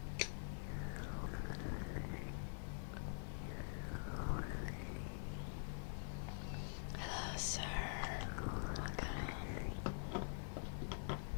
Hello, sir. Welcome.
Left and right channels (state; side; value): silent; right; digital silence